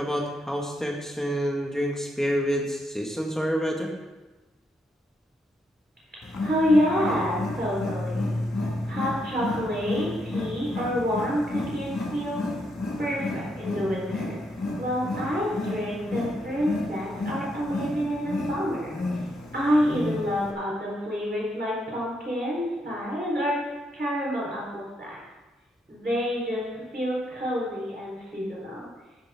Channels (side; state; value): both; normal; correlation 0.78